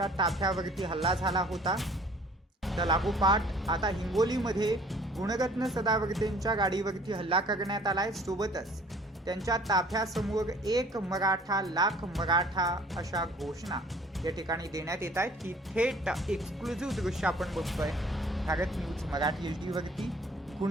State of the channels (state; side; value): normal; both; correlation 0.53